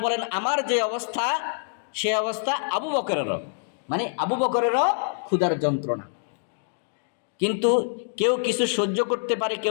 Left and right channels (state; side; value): silent; right; digital silence